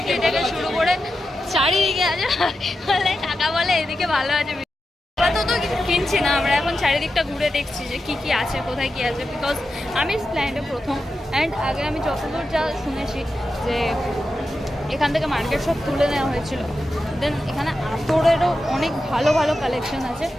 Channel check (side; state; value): both; normal; correlation 0.90